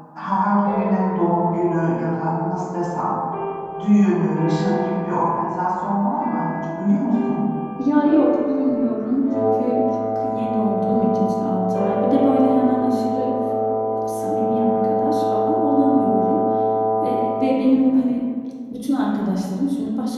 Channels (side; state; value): both; identical; correlation 1.00